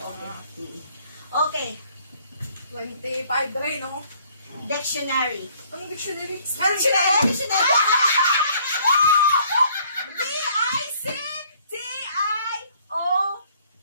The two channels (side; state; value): both; inverted; correlation -0.61